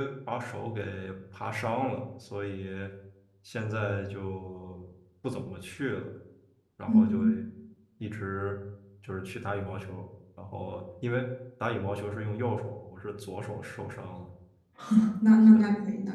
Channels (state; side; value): identical; both; correlation 1.00